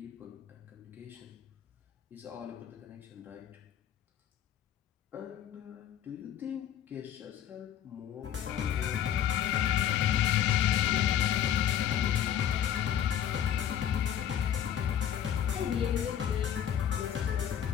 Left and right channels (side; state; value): right; quieter; 10.0 dB